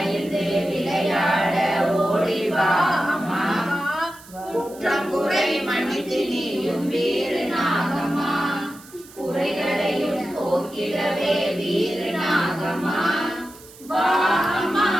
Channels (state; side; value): noise; right; hiss, 21 dB below the sound